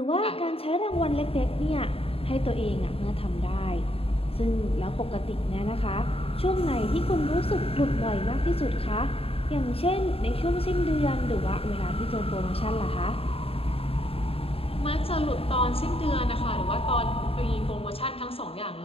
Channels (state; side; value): late; right; 0.28 ms